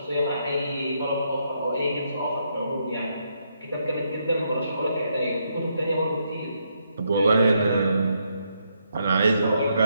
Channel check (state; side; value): inverted; both; correlation -0.77